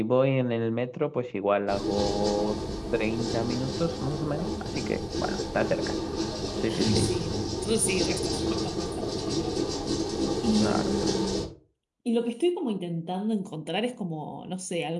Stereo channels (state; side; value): identical; both; correlation 1.00